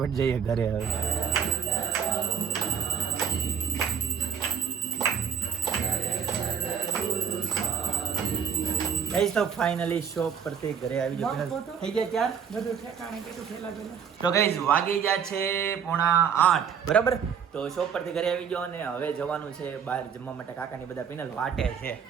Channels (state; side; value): quieter; left; 7.2 dB